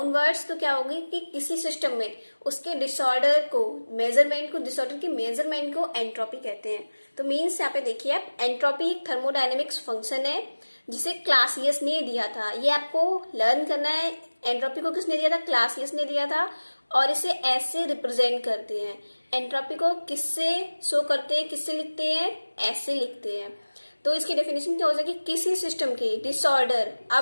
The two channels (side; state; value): both; inverted; correlation -1.00